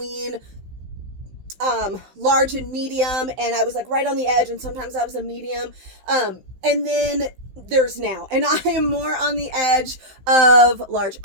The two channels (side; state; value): left; late; 16 ms